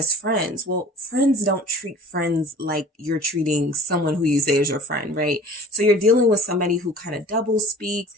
friends. Well, friends don't treat friends like you're treating someone who you say is your friend, right? So you're dealing with somebody who kind of double speaks.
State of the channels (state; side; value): normal; both; correlation 0.44